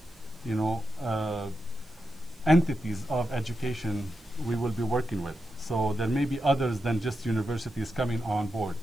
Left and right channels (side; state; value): left; noise; hiss, 28 dB below the sound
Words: entities of education we will be working with. So there may be others than just universities coming on board